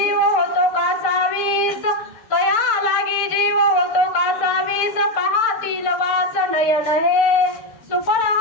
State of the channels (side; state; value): right; late; 6.7 ms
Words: होतो का सावीस, तया लागी जीव होतो का सावीस, पाहतील वास नयन हे, सुफळ